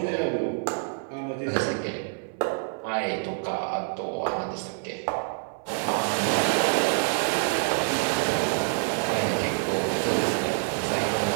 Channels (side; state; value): left; silent; 58 dB below the other